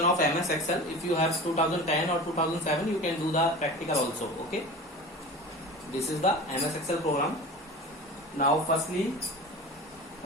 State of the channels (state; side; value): normal; both; correlation 0.34